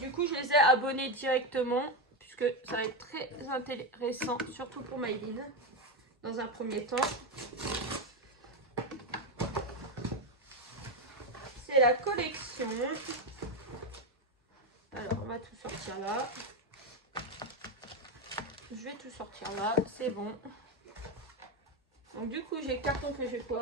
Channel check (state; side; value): normal; both; correlation 0.11